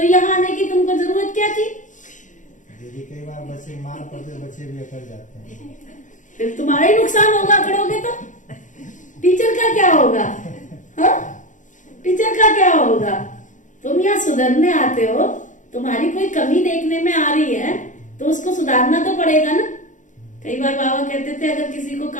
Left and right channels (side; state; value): right; late; 0.37 ms